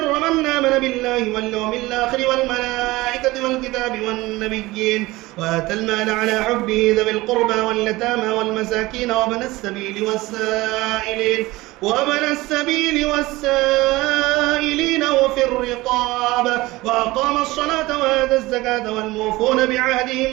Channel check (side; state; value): left; quieter; 19.9 dB